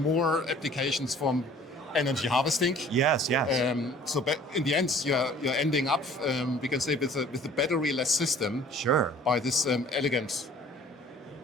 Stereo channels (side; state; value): both; normal; correlation 0.52